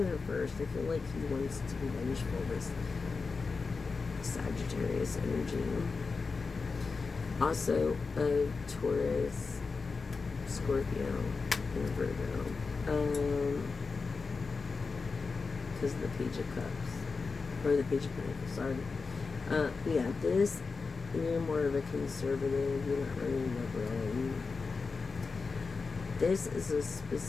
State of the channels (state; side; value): quieter; right; 4.5 dB